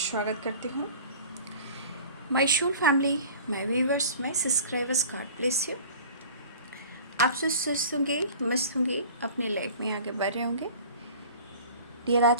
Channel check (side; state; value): both; inverted; correlation -0.43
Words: करती हूँ। My soul family, my viewers, my subscribers, God bless you. आप सब स्वस्थ होंगे, मस्त होंगे, अपनी लाइफ में आगे बढ़ रहे होंगे। डियर,